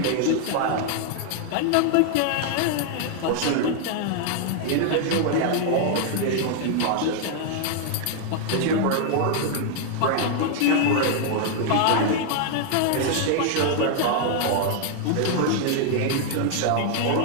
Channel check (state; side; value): different; both; correlation 0.00